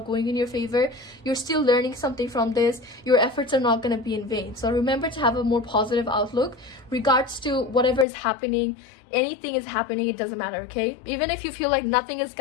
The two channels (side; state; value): right; drops out; at 8.1 s